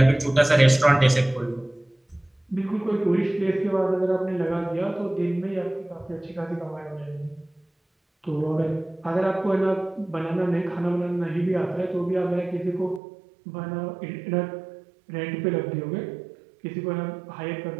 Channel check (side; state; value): left; drops out; at 13.0 s